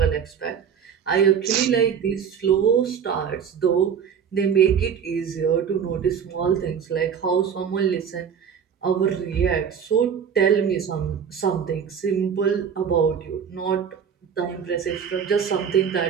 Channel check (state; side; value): quieter; left; 7.5 dB